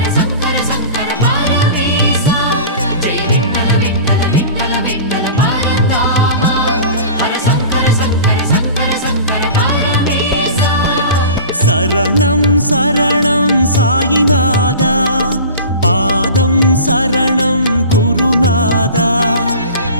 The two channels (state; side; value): inverted; both; correlation -0.37